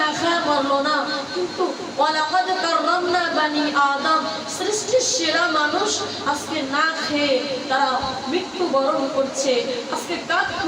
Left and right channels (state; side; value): identical; both; correlation 1.00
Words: খায়া মরলো না, কিন্তু ওয়ালাকাদ কাররামনা বানি আদম, সৃষ্টির সেরা মানুষ আজকে না খেয়ে তারা মৃত্যুবরণ করছে। আজকে কাক